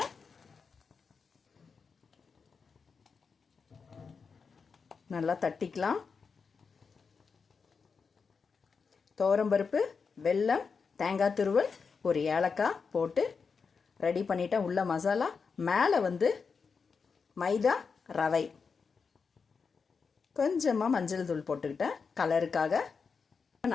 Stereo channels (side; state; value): right; quieter; 5.4 dB